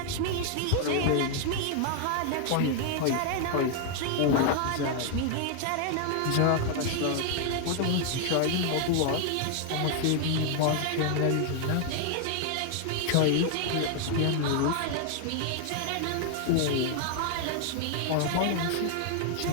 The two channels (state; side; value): different; both; correlation 0.00